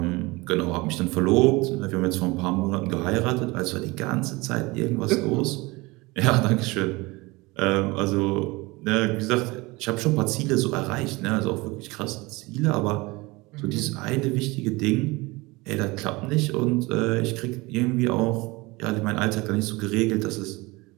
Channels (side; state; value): left; quieter; 23.3 dB